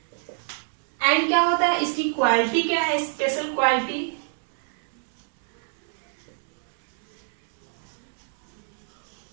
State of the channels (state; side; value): silent; left; 61 dB below the other